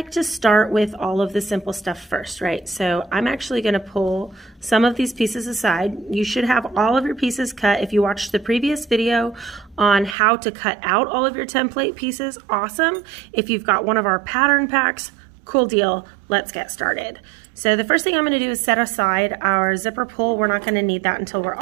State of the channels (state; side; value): drops out; left; at 10.2 s